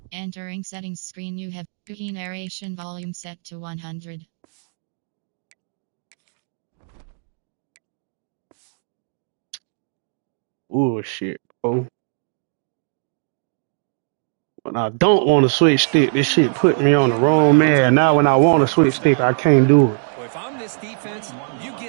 Entering settings screen, you have cookie narration volume set to 100. Oh shit, bro. When I don't want to switch stick, this shit put me on the wrong man. Now when I want to switch stick, I can't do it. Well, if I'm this defense, you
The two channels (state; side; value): silent; left; digital silence